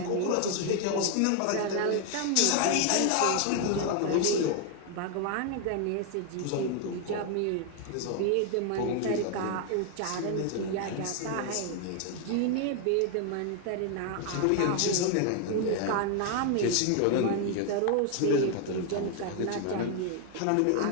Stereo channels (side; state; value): both; different; correlation 0.00